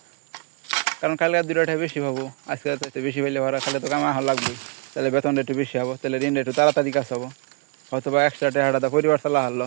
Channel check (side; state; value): left; quieter; 33.8 dB